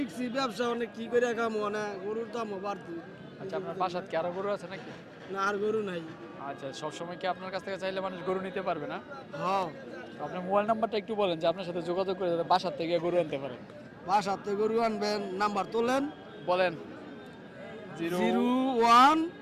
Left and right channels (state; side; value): identical; both; correlation 1.00